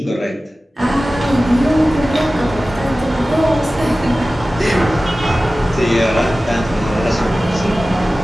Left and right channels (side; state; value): both; normal; correlation 0.96